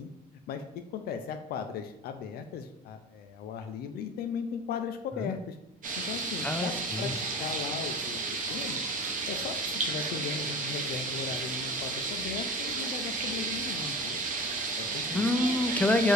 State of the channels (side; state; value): both; normal; correlation 0.35